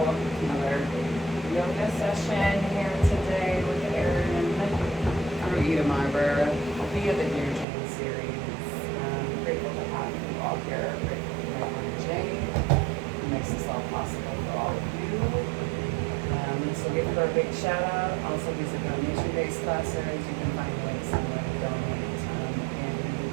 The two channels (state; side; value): drops out; left; at 7.7 s